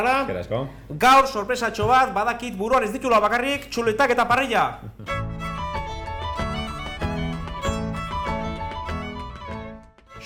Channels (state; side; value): identical; both; correlation 1.00